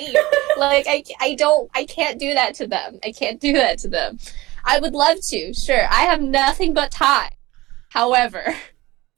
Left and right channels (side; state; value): left; quieter; 19.5 dB